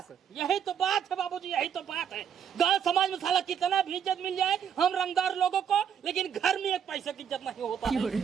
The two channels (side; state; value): left; quieter; 8.2 dB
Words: यही तो बात है बाबूजी, यही तो बात है। गांव समाज में साला कितना भी इज्जत मिल जाए हम रंगदार लोगों को, लेकिन घर में एक पैसे की इज्जत नहीं होता